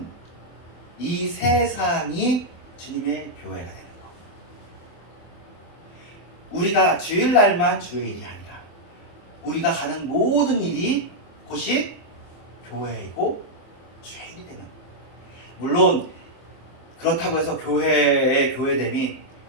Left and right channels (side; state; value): right; late; 23 ms